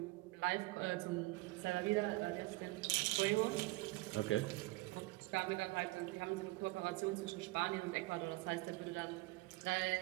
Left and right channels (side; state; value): left; quieter; 21.7 dB